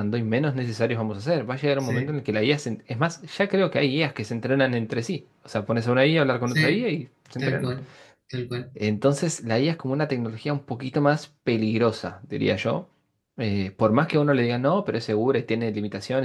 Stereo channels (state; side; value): identical; both; correlation 1.00